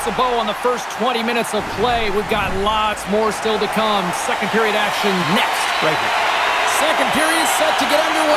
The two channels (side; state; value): both; identical; correlation 1.00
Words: a bow on the first 20 minutes of play. We've got lots more still to come. Second period action next, right here. Second period set to get